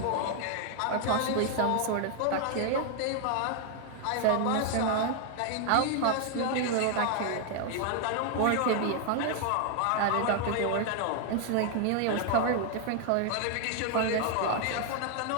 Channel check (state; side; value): different; both; correlation 0.00